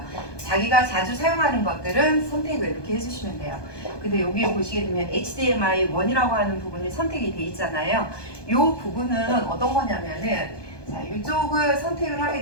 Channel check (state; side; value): late; right; 1.2 ms